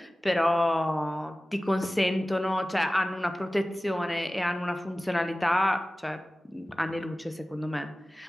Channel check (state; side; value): normal; both; correlation 0.96